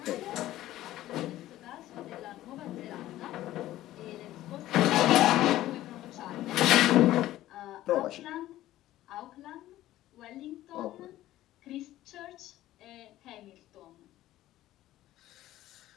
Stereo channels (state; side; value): quieter; right; 14.7 dB